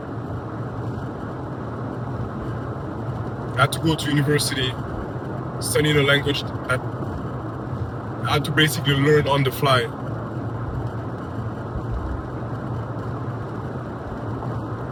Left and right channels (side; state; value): both; identical; correlation 1.00